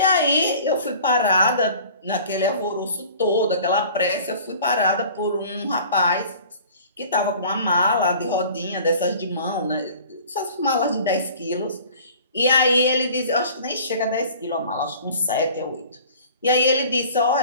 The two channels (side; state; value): both; inverted; correlation -0.46